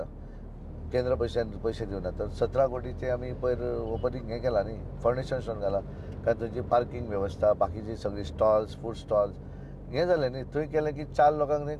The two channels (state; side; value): identical; both; correlation 1.00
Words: केंद्र पयशे दिवना, तर 17 कोटीचे आमी पयर ओपनिंग हें केलां न्ही, फावंडेशन स्टोन घाला. कारण थंयची पार्किंग वेवस्था, बाकीची सगळी स्टॉल्स, फूड स्टॉल्स हें जालें न्ही. थंय केलें की 4 लोकांक थंय